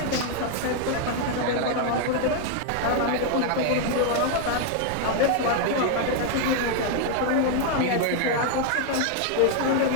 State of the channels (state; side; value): different; both; correlation 0.00